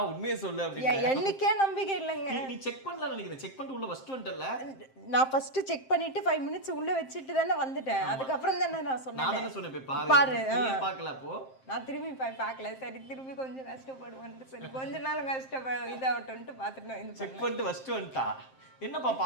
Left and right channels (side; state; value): right; late; 7.6 ms